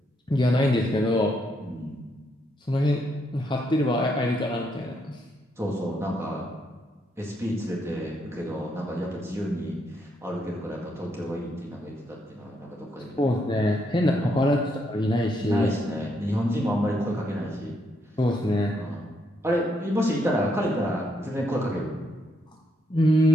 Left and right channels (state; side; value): normal; both; correlation 0.76